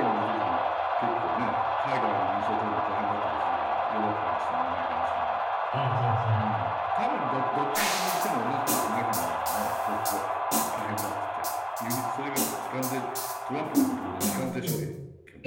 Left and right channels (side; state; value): both; identical; correlation 1.00